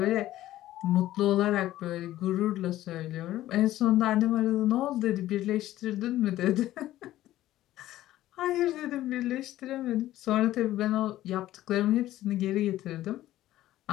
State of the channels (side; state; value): right; quieter; 14.4 dB